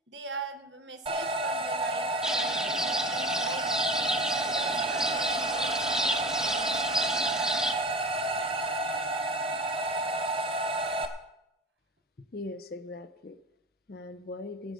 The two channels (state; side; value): normal; both; correlation 0.30